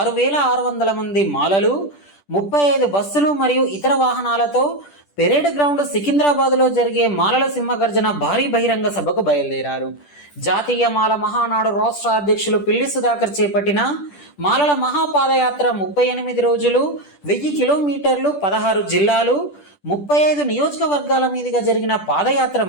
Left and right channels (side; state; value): right; late; 10 ms